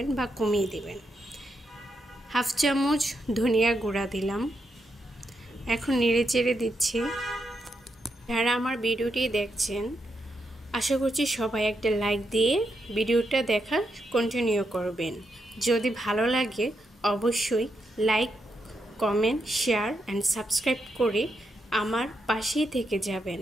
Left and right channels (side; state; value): both; normal; correlation 0.82